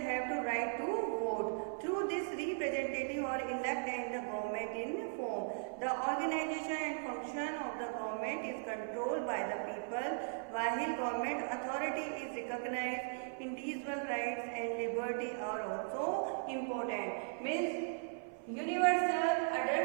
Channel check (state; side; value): silent; left; 52 dB below the other